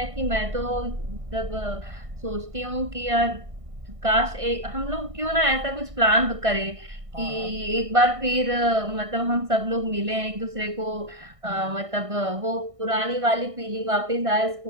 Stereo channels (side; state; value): left; late; 1.6 ms